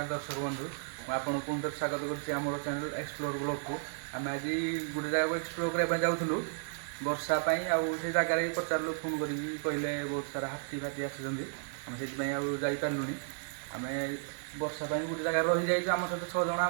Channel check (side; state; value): left; silent; digital silence